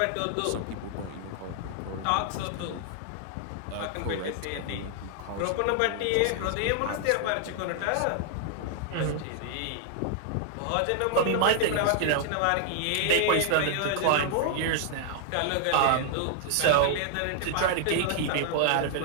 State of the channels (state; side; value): different; both; correlation 0.00